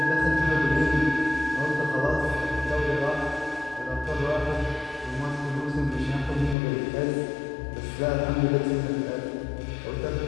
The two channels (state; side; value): drops out; right; at 6.6 s